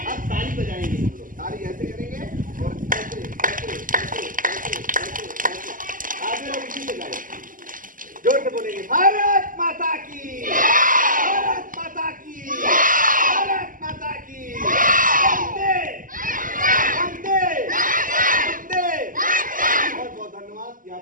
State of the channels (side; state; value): left; late; 0.39 ms